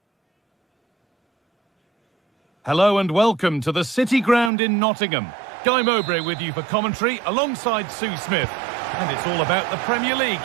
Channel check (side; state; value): left; drops out; at 4.5 s